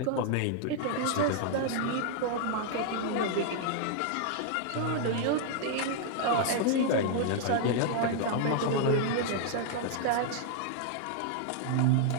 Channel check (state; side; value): different; both; correlation 0.00